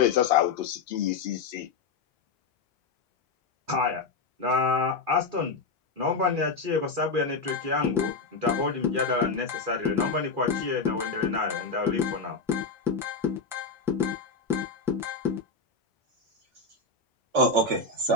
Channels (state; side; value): quieter; right; 4.2 dB